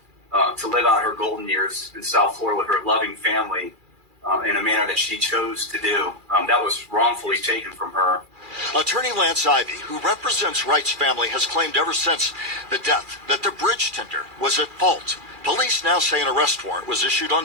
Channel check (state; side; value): late; left; 2.4 ms